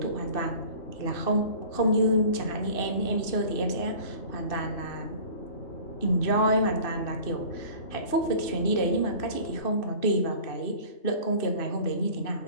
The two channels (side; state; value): right; late; 2.7 ms